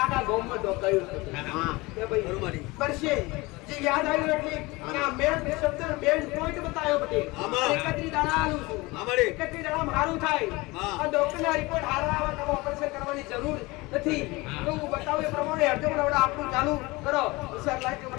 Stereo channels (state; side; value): quieter; right; 22.9 dB